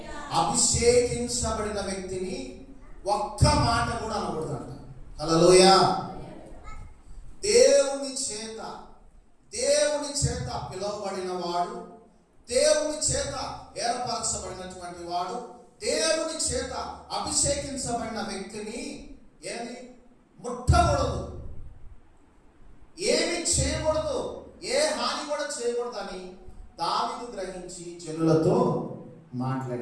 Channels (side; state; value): both; identical; correlation 1.00